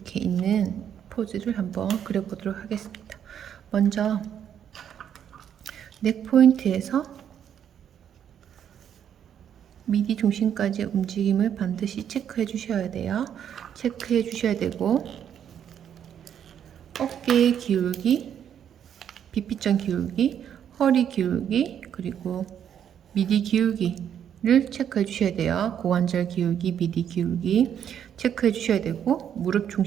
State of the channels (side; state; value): left; quieter; 9.1 dB